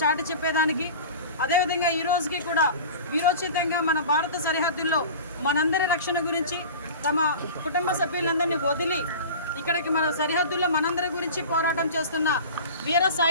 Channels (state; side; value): inverted; both; correlation -0.36